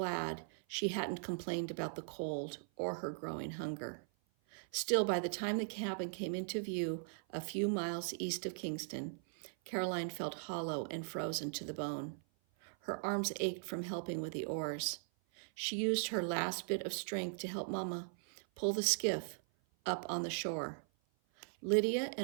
she hadn't complained about the cold or her growing hunger. Still, by the time the cabin came into view a few miles east of Kingston, Caroline felt hollow and frozen to the bone. Her arms ached from helping with the oars. She used her last bit of strength to help Mama pull the skiff up on the shore. Lydia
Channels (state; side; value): silent; left; 52 dB below the other